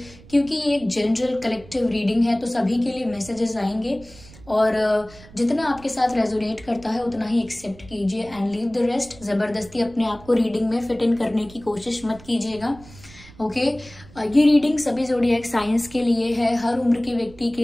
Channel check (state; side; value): noise; right; rumble, 21 dB below the sound